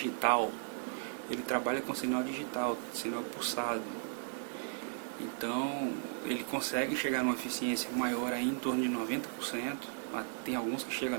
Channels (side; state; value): left; silent; digital silence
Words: Ele trabalha com sinal digital, sinal pulsado. Então ele consegue chegar numa eficiência maior aí, em torno de 90%. Tem alguns que chegam